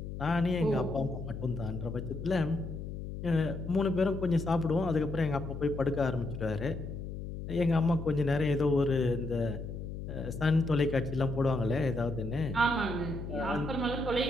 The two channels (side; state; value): left; noise; hum, 7 dB below the sound